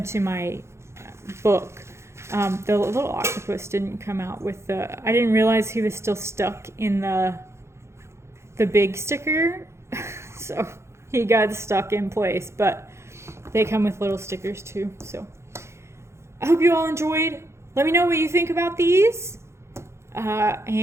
to my book. The little octopus didn't come out with I didn't realize he was still stuck in the big sticker. So he got stuck in place, but they come with little stickers too. So I hope you all enjoyed. Let me know what you think about these.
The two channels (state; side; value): late; left; 0.13 ms